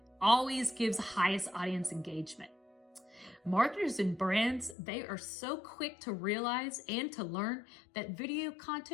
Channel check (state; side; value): drops out; right; at 4.8 s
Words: always gives highest audience engagement. Marketers and brands, they are so quick to realize and to learn that video